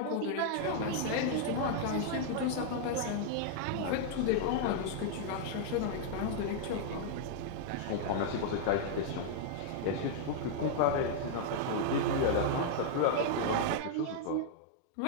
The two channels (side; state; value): both; different; correlation -0.01